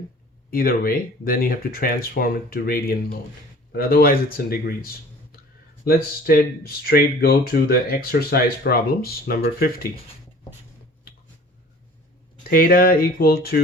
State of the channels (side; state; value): both; normal; correlation 0.47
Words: either way, then you have to transform it to radian mode. But otherwise it's in degrees. Let's straight go to the exercise problems. Number 50. Theta equal